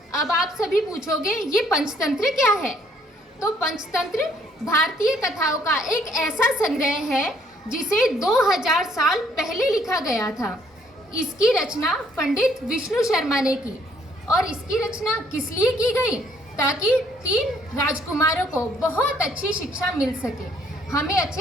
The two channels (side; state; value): both; normal; correlation 0.65